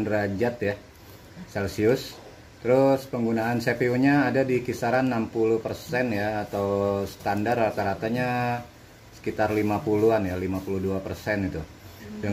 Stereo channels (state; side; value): identical; both; correlation 1.00